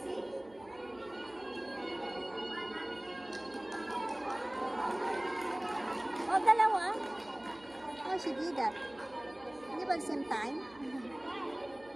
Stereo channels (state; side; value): noise; right; hum, 25 dB below the sound